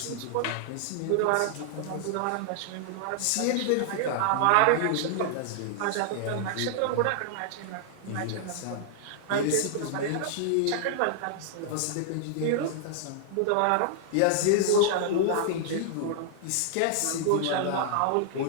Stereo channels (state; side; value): different; both; correlation -0.01